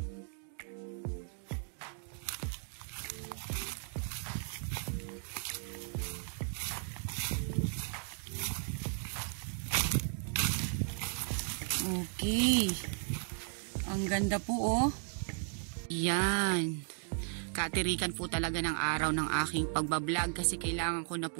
Okay. Ang ganda po, oh. Yan. Katirikan po talaga ng araw ng aking pagbablog kasi kailangan ko na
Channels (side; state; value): left; silent; 54 dB below the other